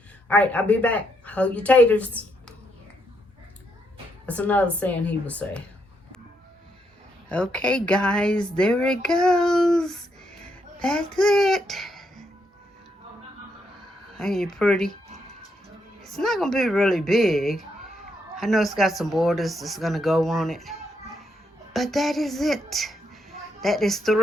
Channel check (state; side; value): normal; both; correlation 0.78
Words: All right, I'll be back. Hold your taters. That's another saying he would say. Okay, guys, there it goes. That's it. Ain't it pretty? It's not gonna be really big. I know it's got some borders that's gonna go on it, but that is it. That is